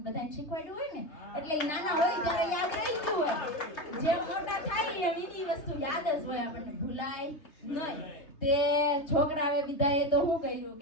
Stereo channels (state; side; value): late; right; 3.3 ms